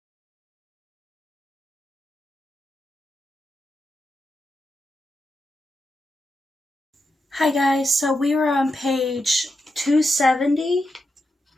Hi guys, so we were on page 270.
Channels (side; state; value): both; normal; correlation 0.86